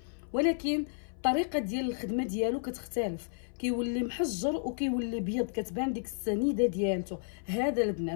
ولكن الطريقه ديال الخدمه ديالو كتختلف، كيولي محجر وكيولي بيض، كتبان ديك السنيده ديالته. هذا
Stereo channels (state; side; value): silent; right; 56 dB below the other